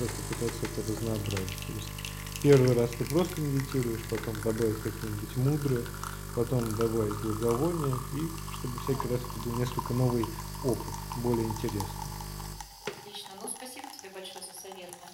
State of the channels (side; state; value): both; identical; correlation 1.00